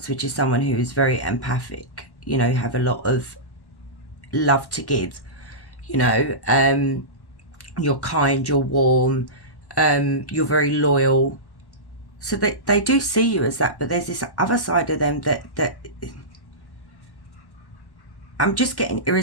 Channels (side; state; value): right; late; 1.1 ms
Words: which is someone who is very empathic. You know, you have a lot of love to give. You know, you're kind, you're warm, you're very loyal. So they do see you as that, but there's this other side of them that I'm just getting